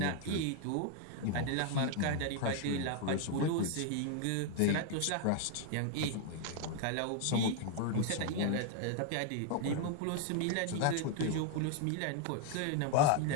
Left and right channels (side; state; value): both; different; correlation 0.00